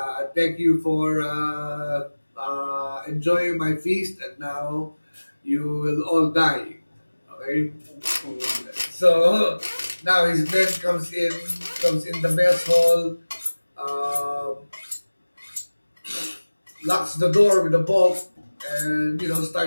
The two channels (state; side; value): inverted; both; correlation -1.00